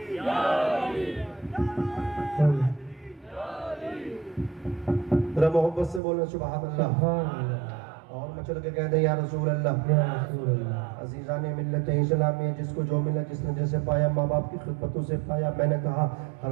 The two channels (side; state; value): left; drops out; at 6.0 s